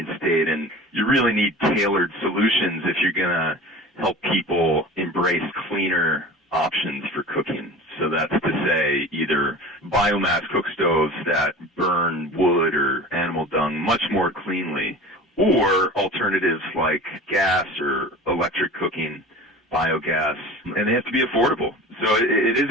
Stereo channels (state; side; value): normal; both; correlation 0.37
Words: state, and you really need tailored solutions if you're going to help people embrace cleaner options for cooking. So that's to say either biomass cook stoves that burn wood or animal dung much more cleanly, or alternatives like gas or electric cooking, biogas, and they have to be affordable. So it is